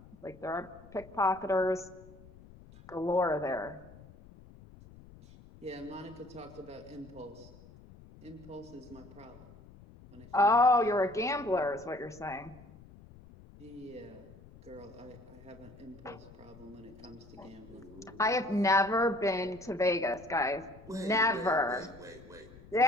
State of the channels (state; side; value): noise; left; rumble, 21 dB below the sound